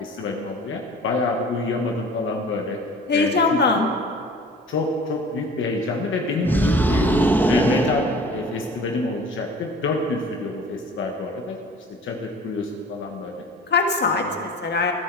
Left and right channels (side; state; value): both; normal; correlation 0.44